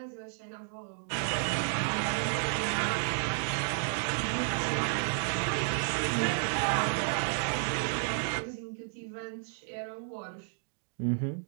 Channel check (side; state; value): left; silent; 56 dB below the other